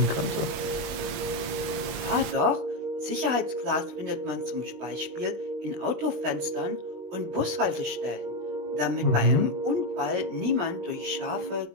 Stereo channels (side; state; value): left; late; 20 ms